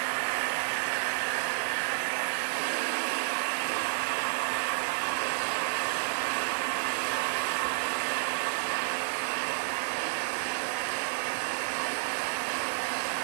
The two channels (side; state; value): left; silent; 56 dB below the other